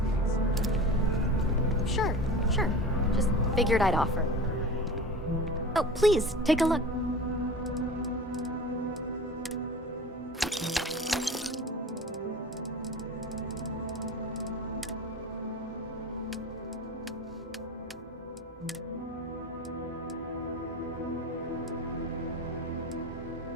Sure. Just figured I'd offer. Oh, please, take a look.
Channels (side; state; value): both; normal; correlation 0.34